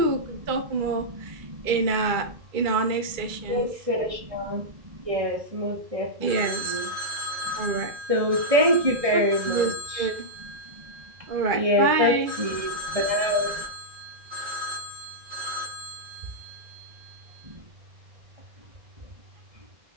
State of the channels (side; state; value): left; late; 2.3 ms